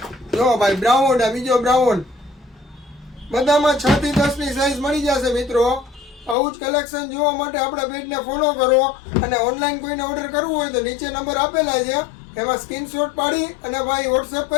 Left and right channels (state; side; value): drops out; right; at 6.4 s